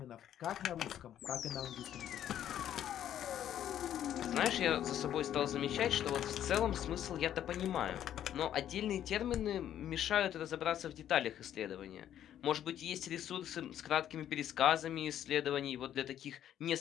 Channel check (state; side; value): quieter; right; 10.8 dB